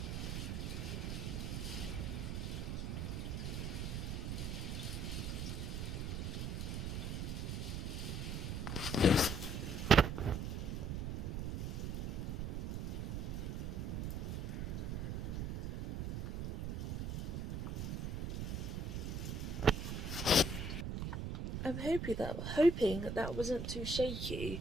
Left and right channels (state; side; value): noise; right; rumble, 2 dB below the sound